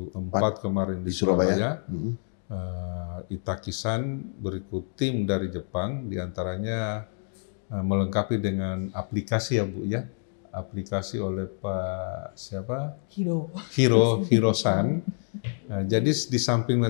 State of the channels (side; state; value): right; silent; 60 dB below the other